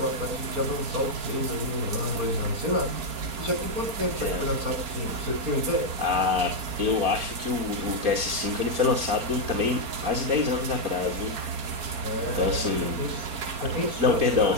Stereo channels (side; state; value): left; late; 4.4 ms